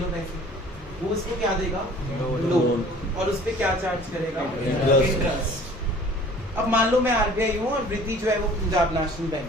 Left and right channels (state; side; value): normal; both; correlation 0.49